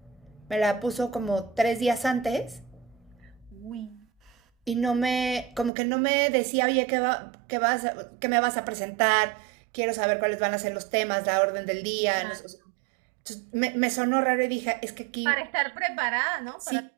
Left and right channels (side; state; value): left; drops out; at 5.7 s